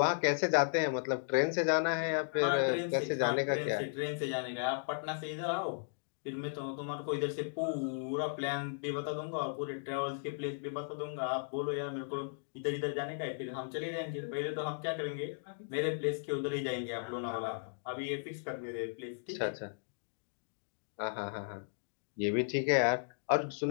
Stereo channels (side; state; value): right; silent; digital silence